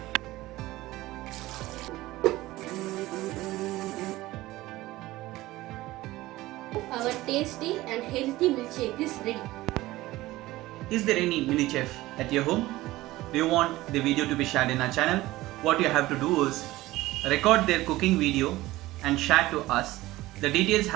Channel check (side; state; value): left; quieter; 17.7 dB